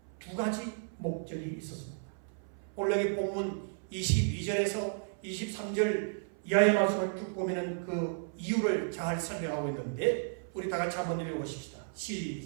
두 가지 목적이 있었습니다. 오늘 여기 본문 22절에서 23절 이하의 말씀을 쭉 보면 그 이유를 잘 설명하고 있는데 우리 다 같이 한번 읽어보십시다.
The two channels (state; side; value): silent; left; 55 dB below the other